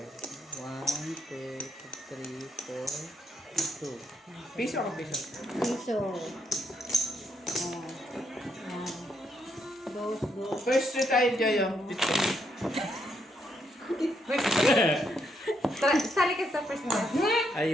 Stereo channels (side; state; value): both; normal; correlation 0.76